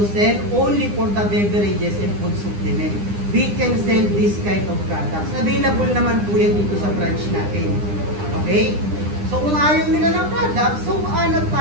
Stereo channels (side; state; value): left; late; 9.9 ms